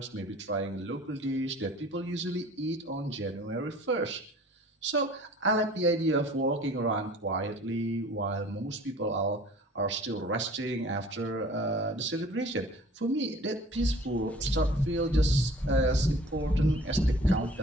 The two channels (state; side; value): normal; both; correlation 0.48